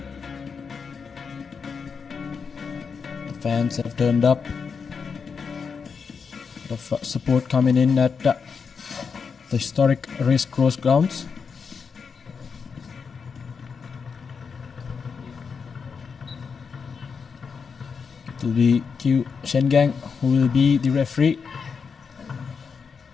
The fans have turned up. A lot of support coming in at the historic Racecourse grounds. It will be Q Shengang who will be the referee.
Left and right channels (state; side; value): quieter; right; 5.8 dB